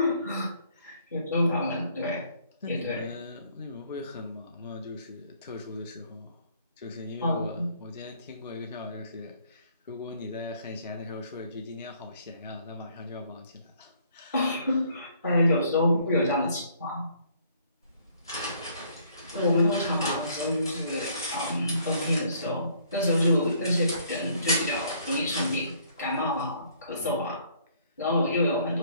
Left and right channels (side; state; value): both; inverted; correlation -0.62